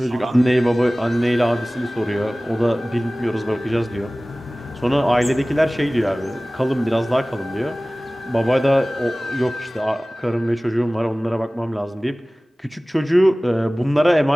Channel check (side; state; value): both; normal; correlation 0.98